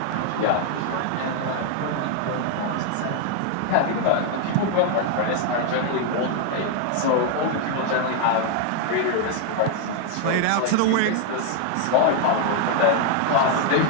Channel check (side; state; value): both; different; correlation 0.01